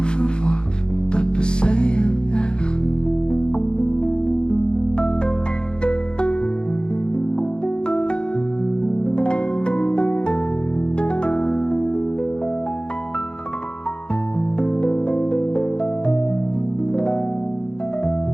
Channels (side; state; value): right; late; 0.050 ms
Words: verworf, dat beseien echt.